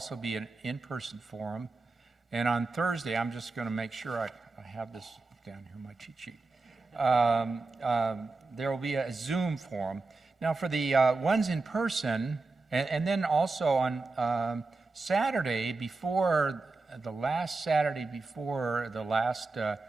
be an in-person forum. And on Thursday, I'm just going to make sure I have this down here in my cheat sheet. There will be a Zoom forum. Now, for the ones in person, and then also on Saturday before the last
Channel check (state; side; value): quieter; left; 3.6 dB